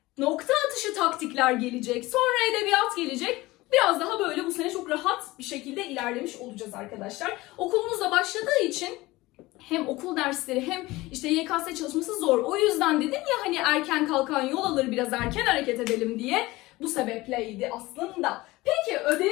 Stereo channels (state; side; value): quieter; right; 19.8 dB